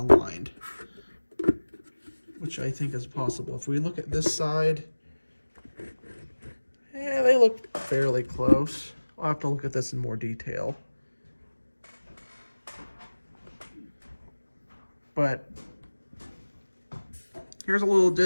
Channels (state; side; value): inverted; both; correlation -1.00